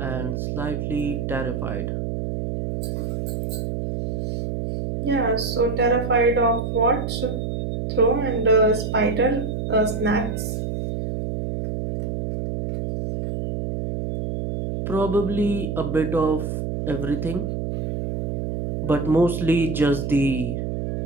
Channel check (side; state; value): right; noise; hum, 3 dB below the sound